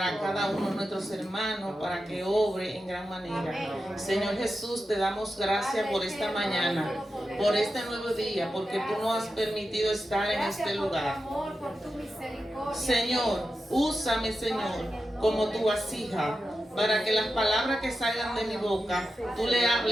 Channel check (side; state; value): both; normal; correlation 0.90